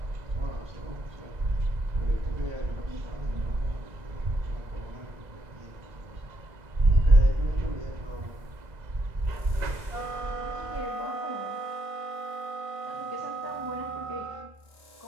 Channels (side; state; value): left; late; 1.5 ms